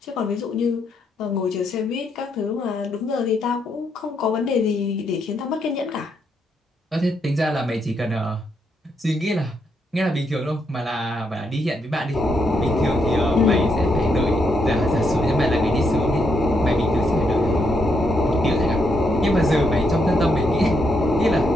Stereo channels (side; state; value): both; normal; correlation 0.78